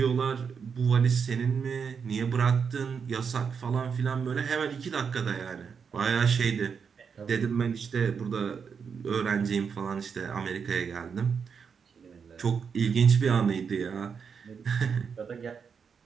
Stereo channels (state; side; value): quieter; left; 6.3 dB